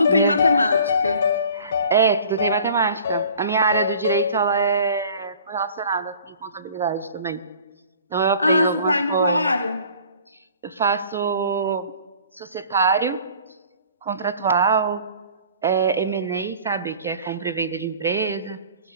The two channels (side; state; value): both; inverted; correlation -0.48